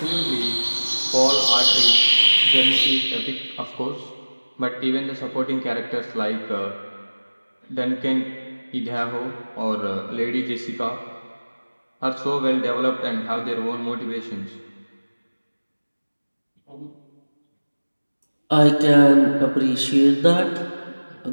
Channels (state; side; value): inverted; both; correlation -1.00